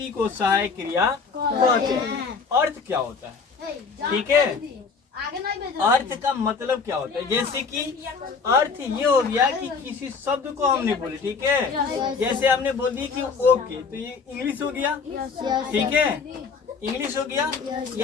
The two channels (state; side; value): quieter; right; 5.1 dB